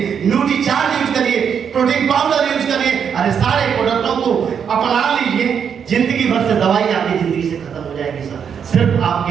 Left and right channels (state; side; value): quieter; left; 7.4 dB